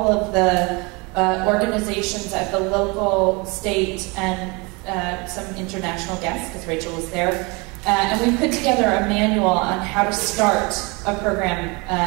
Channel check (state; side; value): quieter; left; 28.1 dB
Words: of the organizations at the local, state, and some international guests, because Rachel was there. And we put together a manual on how to start a program